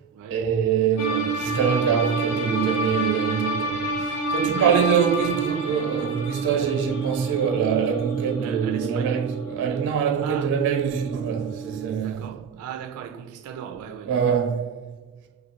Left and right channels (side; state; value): left; quieter; 6.0 dB